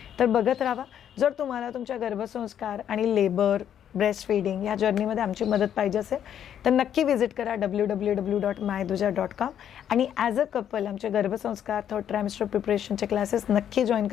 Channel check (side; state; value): right; quieter; 9.7 dB